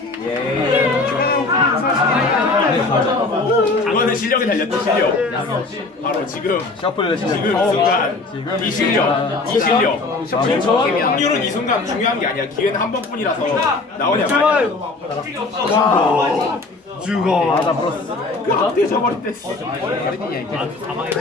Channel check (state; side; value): quieter; right; 3.5 dB